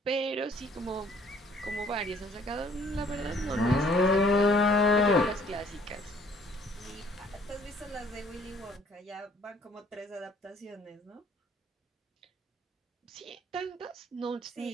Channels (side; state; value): both; normal; correlation 0.60